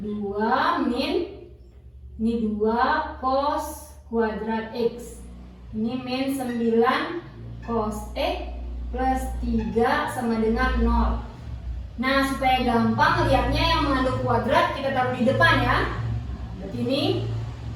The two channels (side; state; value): both; identical; correlation 1.00